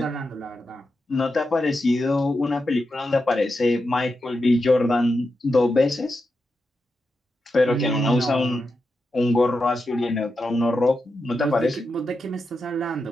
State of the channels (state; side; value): normal; both; correlation 0.88